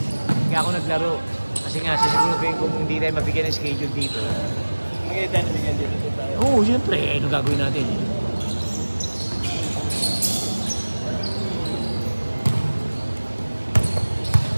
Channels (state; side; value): inverted; both; correlation -1.00